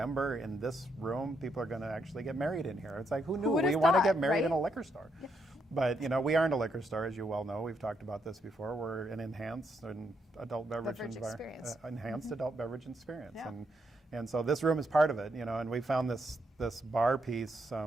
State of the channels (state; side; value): normal; both; correlation 0.78